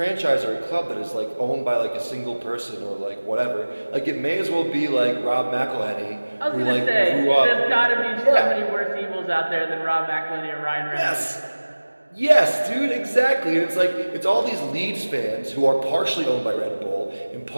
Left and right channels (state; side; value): inverted; both; correlation -1.00